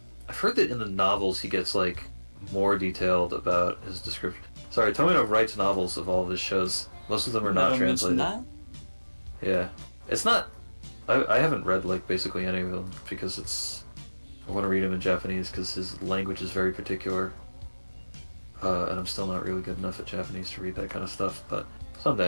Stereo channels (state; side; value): inverted; both; correlation -1.00